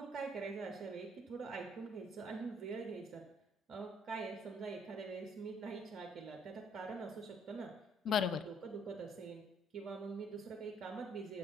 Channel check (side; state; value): both; normal; correlation 0.64